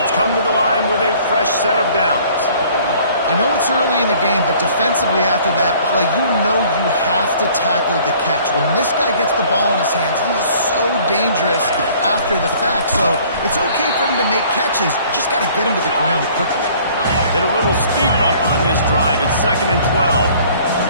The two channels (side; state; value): both; inverted; correlation -0.54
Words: come to the line with a fresh set of downs. I know it's early in the game, but defensively after that play, you know you have to tackle the catch. When this guy gets the ball in his hands, he is so dangerous after the fact. So it's okay for him to make catches. You just got to get him to the ground quickly. Hit a little speed bump on this drive. It's 2nd and 12.